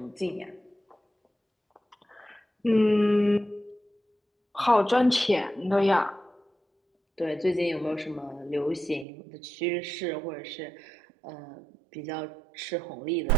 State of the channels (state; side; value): drops out; left; at 9.1 s